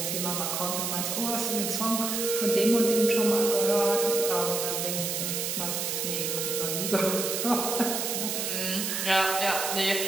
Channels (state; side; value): noise; right; hiss, 1 dB below the sound